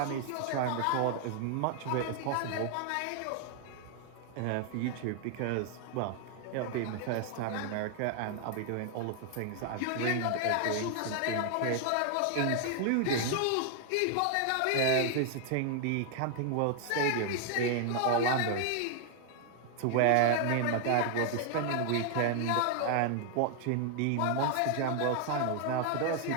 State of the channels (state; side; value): different; both; correlation 0.00